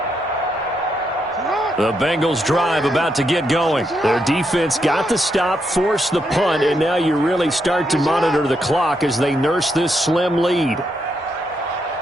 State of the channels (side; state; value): both; normal; correlation 0.80